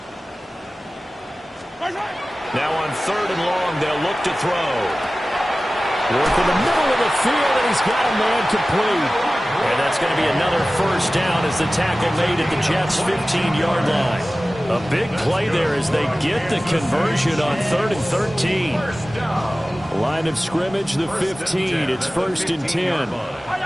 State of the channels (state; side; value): normal; both; correlation 0.96